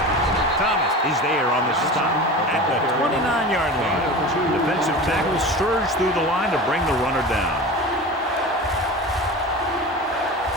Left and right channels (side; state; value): both; normal; correlation 0.32